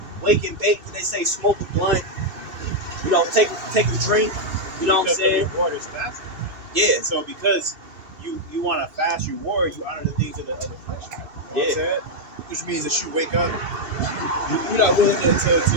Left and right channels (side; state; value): left; late; 2.6 ms